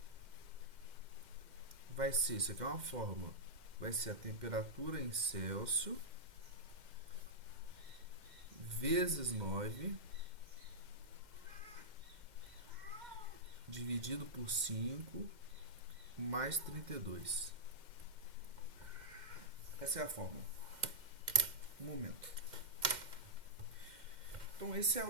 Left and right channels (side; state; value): left; late; 2.1 ms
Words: vai ser, isso aqui é uma fórmula, vai ser a temperatura em Celsius vezes 9 dividido por 5 mais 32. Essa é a fórmula. Um momento. Então, esse é